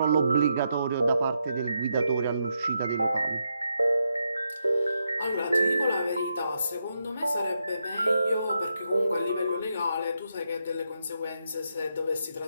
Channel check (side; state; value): both; inverted; correlation -0.82